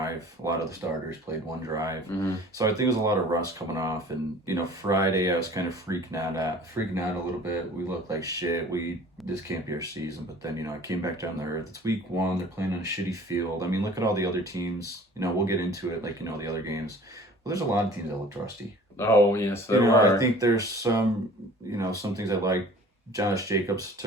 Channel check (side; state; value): both; normal; correlation 0.47